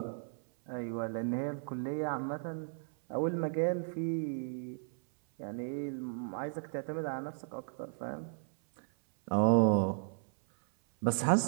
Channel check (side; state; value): left; silent; 55 dB below the other